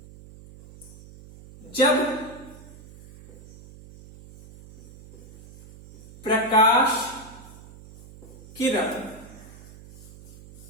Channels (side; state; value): right; noise; hum, 19 dB below the sound